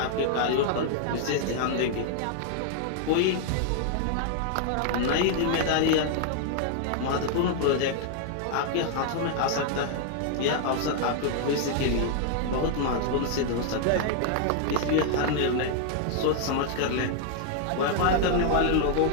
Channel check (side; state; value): both; different; correlation 0.00